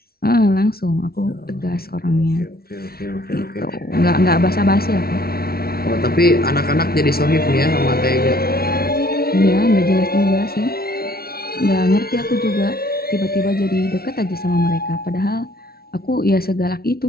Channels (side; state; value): right; late; 0.44 ms